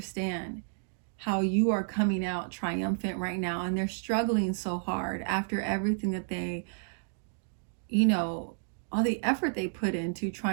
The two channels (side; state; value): left; silent; digital silence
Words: how you are coming out triumphant right now, and they're struggling so hard after everything that they, all the effort they put into